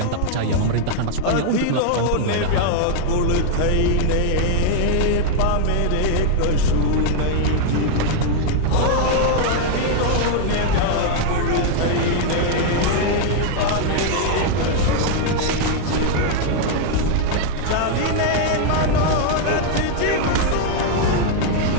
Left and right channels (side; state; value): both; different; correlation 0.00